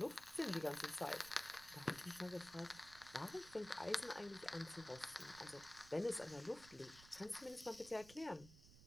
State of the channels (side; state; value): right; noise; rumble, 18 dB below the sound